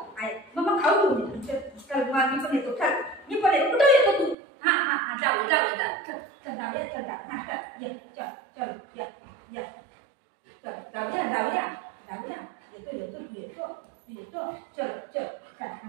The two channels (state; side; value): drops out; left; at 4.4 s